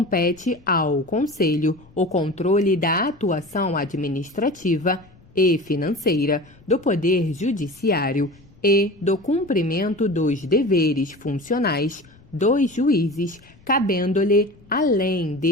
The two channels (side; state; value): left; noise; rumble, 26 dB below the sound